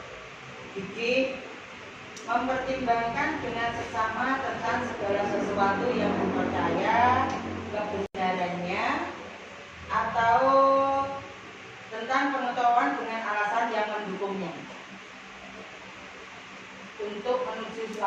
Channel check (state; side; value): identical; both; correlation 1.00